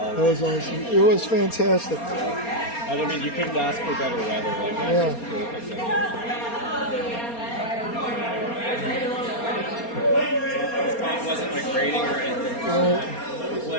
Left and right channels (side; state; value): right; late; 4.3 ms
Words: That was awesome. It was fantastic. I mean, you couldn't ask for better weather. Like, that's just perfect. It wasn't like raining or anything. The